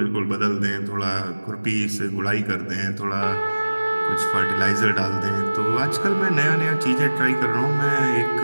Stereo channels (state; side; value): inverted; both; correlation -1.00